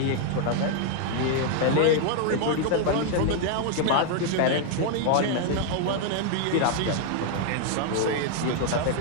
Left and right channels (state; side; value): different; both; correlation 0.00